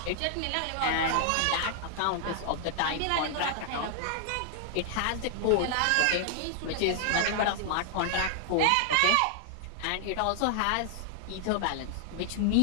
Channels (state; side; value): different; both; correlation 0.00